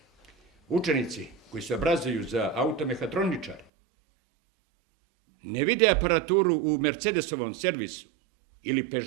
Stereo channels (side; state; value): left; drops out; at 3.7 s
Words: učenici koji se obrazuju za automehatroničare ne vide aparaturu u Mercedesovom servisu, ili